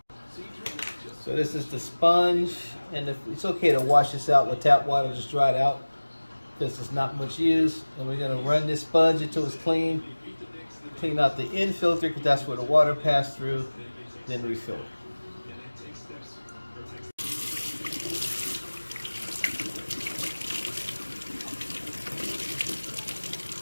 So this is the sponge, and it's okay to wash this out with tap water. Just dry it out because it's not much use. And we're gonna run this sponge until it's clean. Clean out the end filter because that's where the water passed through. Then refill it.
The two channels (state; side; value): inverted; both; correlation -1.00